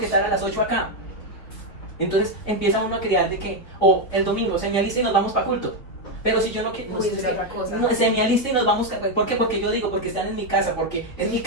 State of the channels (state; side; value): late; right; 4.2 ms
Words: estar a las 8 acá. Entonces empieza uno a crear de que, el domingo se me alista y nos vamos para culto. Pero si yo no quiero, se me alista y nos vamos, ¿por qué? Porque yo digo, porque están en mi casa, porque es mi